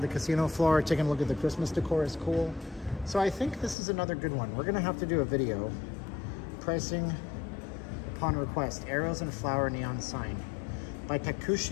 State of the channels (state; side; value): drops out; right; at 3.8 s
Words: the casino floor, taking a look at the Christmas decor is cool. So I think this is another good one. We're gonna have to do a video. Pricing upon request. Arrows and flower neon sign. By